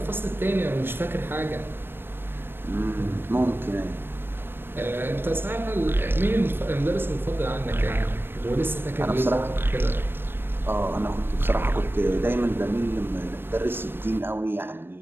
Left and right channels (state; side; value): late; left; 0.10 ms